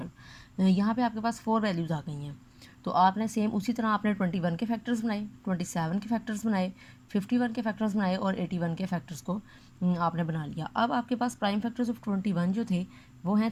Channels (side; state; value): both; identical; correlation 1.00